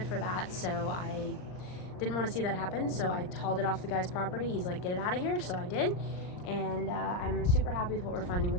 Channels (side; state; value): right; late; 39 ms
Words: for that, so I didn't want to see that happen, so I hauled it off the guy's property. He's like, get it out of here, so I did. And I'm super happy with what we're finding